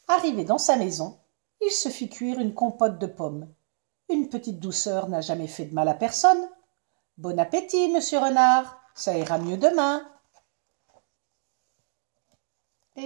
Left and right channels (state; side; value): silent; left; digital silence